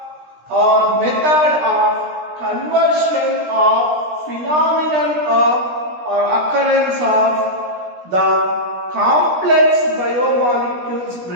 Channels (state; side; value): late; left; 17 ms